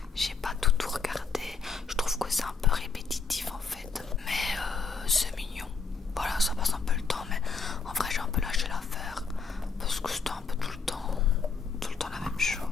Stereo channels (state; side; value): quieter; right; 5.1 dB